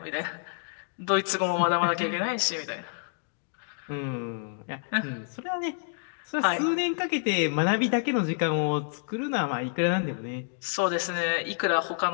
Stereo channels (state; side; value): silent; right; digital silence